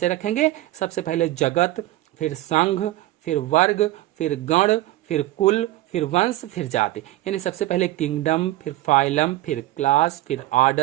रखेंगे? सबसे पहले जगत, फिर संघ, फिर वर्ग, फिर गण, फिर कुल, फिर वंश, फिर जाति। यानी सबसे पहले किंगडम, फिर फाइलम, फिर क्लास, फिर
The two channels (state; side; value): quieter; left; 16.4 dB